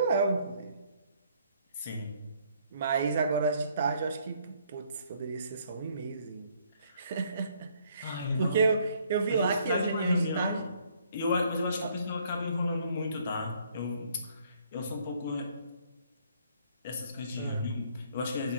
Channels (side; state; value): both; inverted; correlation -0.65